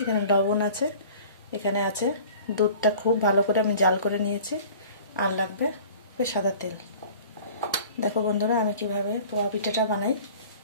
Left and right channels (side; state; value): both; inverted; correlation -0.45